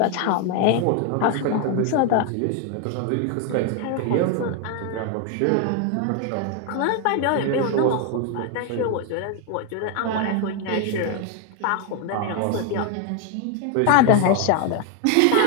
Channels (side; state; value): both; different; correlation 0.01